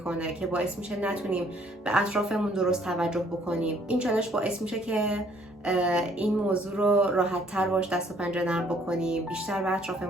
که باعث میشه نتونیم به اطرافمون درست توجه بکنیم. این چالش باعث میشه که این موضوع رو راحت تر باش دست و پنجه نرم بکنیم، بیشتر به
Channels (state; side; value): normal; both; correlation 0.62